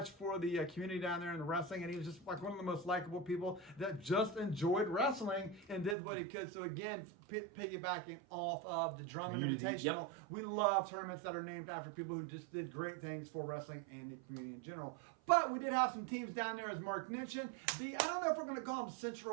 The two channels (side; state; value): left; drops out; at 6.0 s